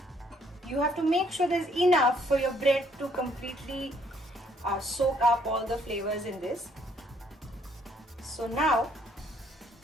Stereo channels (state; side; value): normal; both; correlation 0.66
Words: you have to make sure there's enough for your bread to completely soak up all the flavors in this. So now